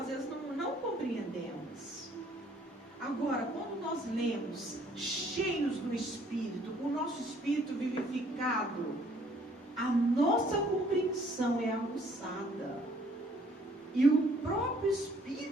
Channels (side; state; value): both; normal; correlation 0.61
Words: vezes não compreendemos. Agora, quando nós lemos cheios do Espírito, com o nosso espírito vivificado, a nossa compreensão é aguçada. E o próprio